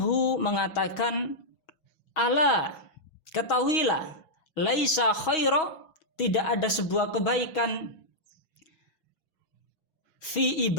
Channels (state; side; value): late; right; 6.3 ms